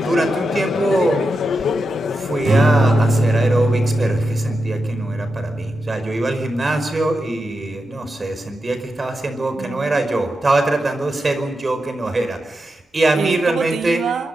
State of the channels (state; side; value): normal; both; correlation 0.88